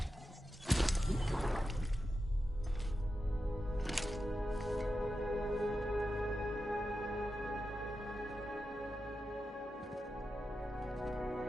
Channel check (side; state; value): both; normal; correlation 0.90